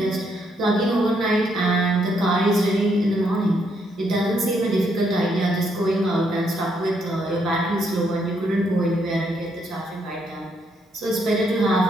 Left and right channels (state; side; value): normal; both; correlation 0.74